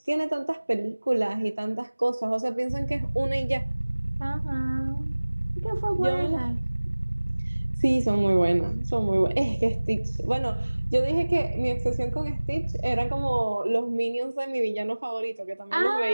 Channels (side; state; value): both; inverted; correlation -1.00